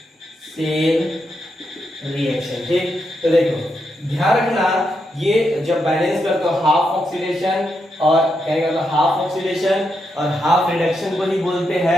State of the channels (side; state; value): both; normal; correlation 0.83